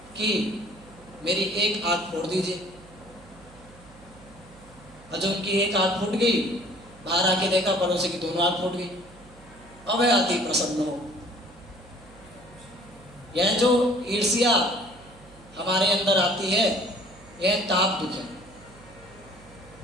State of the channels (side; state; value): right; noise; hum, 23 dB below the sound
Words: कि मेरी एक आंख फोड़ दीजिए। और जब उनकी एक आंख फूट गई, बाहर आके देखा पड़ोसी की दोनों आंख फूट गई। अब वह अति प्रसन्न हो। यह जो ईर्ष्या हमारे अंदर आती है, यह ताप दुख है।